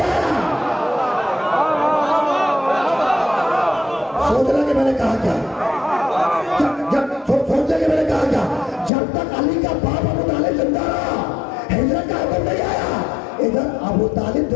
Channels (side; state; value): right; drops out; at 8.9 s